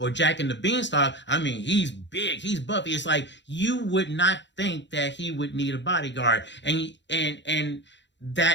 Jack and the Beanstalk. I mean, he's big, he's buffy. It's like you would not think that he would need a bodyguard, and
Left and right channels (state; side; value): late; right; 0.52 ms